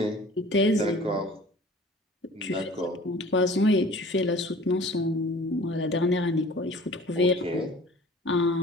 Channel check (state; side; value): normal; both; correlation 0.46